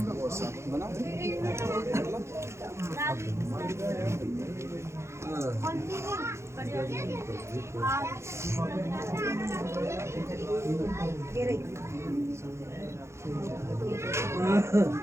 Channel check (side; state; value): left; late; 0.13 ms